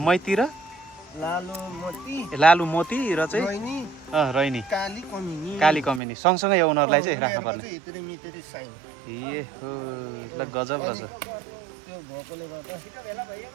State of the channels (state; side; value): drops out; left; at 6.0 s